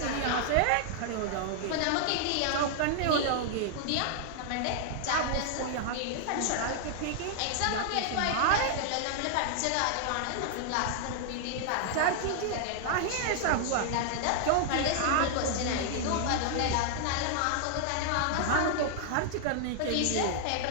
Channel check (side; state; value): both; different; correlation -0.01